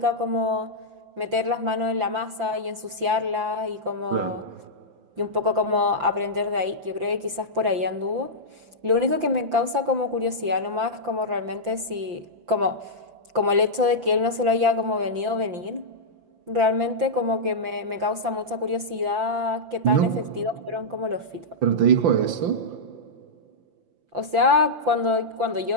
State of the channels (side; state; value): left; late; 5.8 ms